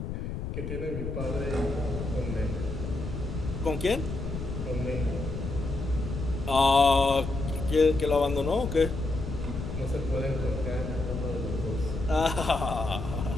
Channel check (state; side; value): noise; left; rumble, 5 dB below the sound